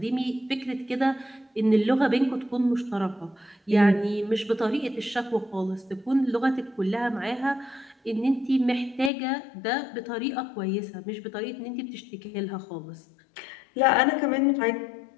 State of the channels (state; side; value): drops out; right; at 9.1 s